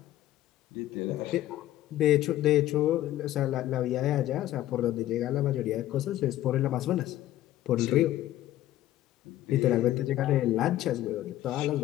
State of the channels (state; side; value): quieter; right; 14.0 dB